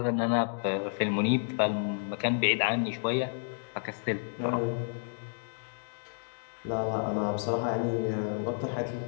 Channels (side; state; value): right; silent; digital silence